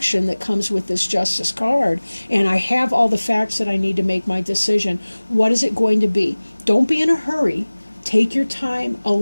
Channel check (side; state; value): both; inverted; correlation -1.00